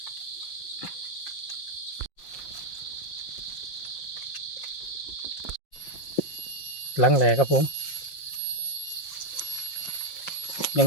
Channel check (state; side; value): late; right; 5.6 ms